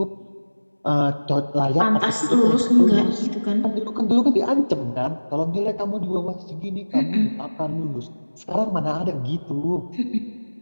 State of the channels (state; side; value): inverted; both; correlation -1.00